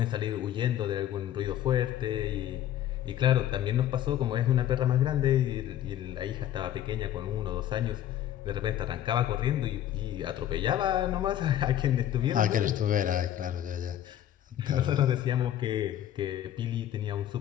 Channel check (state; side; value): quieter; right; 11.6 dB